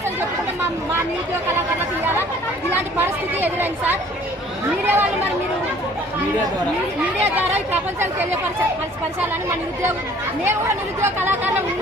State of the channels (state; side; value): normal; both; correlation 0.54